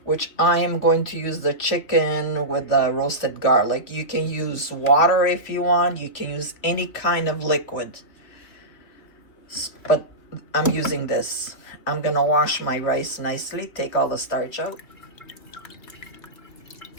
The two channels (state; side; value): late; right; 2.8 ms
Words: which I am going to use the chicken with the roasted garlic. You can use water if you want. You can use any kind of liquid, but I'm using this. I'm gonna wash my rice nicely, take all the starch out.